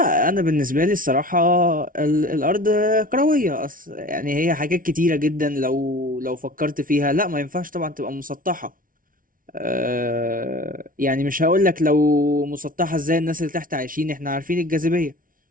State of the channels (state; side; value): late; left; 0.40 ms